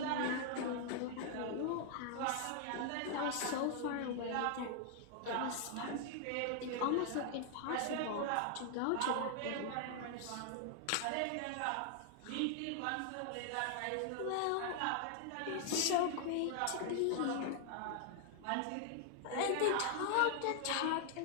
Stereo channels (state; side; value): different; both; correlation 0.00